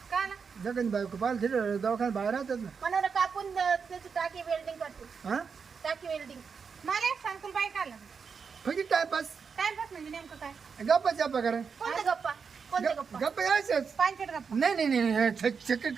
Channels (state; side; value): quieter; left; 5.8 dB